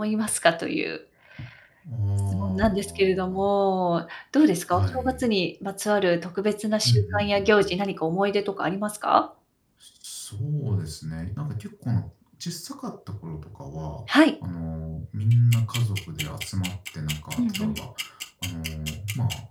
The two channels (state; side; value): identical; both; correlation 1.00